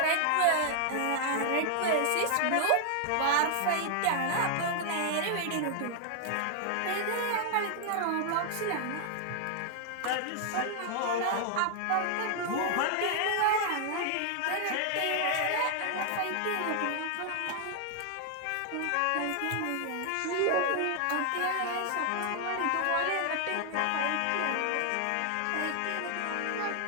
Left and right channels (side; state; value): both; different; correlation 0.00